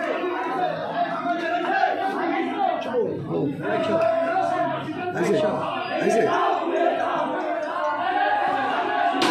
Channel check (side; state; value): both; identical; correlation 1.00